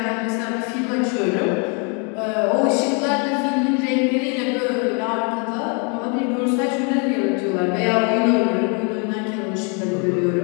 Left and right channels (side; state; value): right; quieter; 35.6 dB